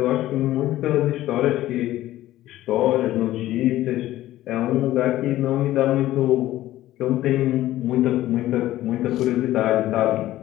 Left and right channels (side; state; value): right; quieter; 14.8 dB